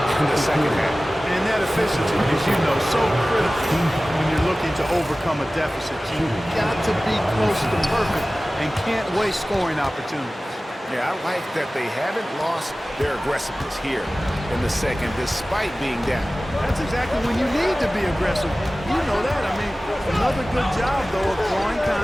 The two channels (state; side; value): normal; both; correlation 0.97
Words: in the second half. And that efficiency, as you know, so critical when you're looking to overcome a deficit. You've got to be close to perfect and can't waste scoring opportunities. Yeah, I like that they haven't lost their aggressiveness here in the second, despite being down. That's exactly when you need to be aggressive. You know that. I mean, another good job, though, of drawing